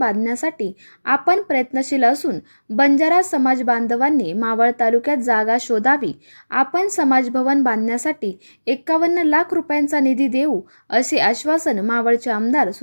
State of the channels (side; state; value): both; inverted; correlation -1.00